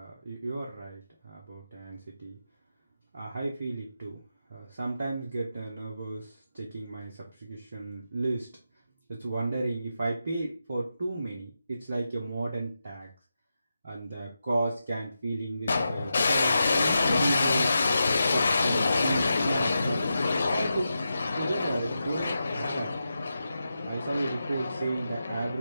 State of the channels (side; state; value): both; inverted; correlation -0.88